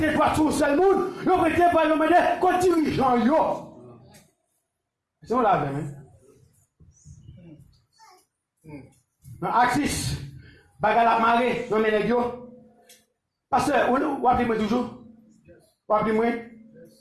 toi sur le seul monde, il va mettre toi sur le qu'on dirigeant yo. C'est on l'a vu, hein? Dans Axis, bagage la marée, non mais les gars. Parce que, vous appelez moi toujours? Vous appelez moi?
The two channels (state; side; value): identical; both; correlation 1.00